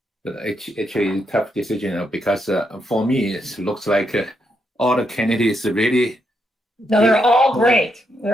but actually tough decision because for me it looks like all the candidates really. No, they're all great.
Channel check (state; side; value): normal; both; correlation 0.80